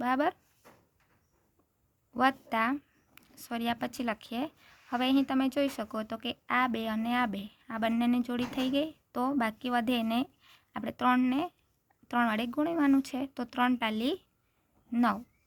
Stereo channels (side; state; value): both; identical; correlation 1.00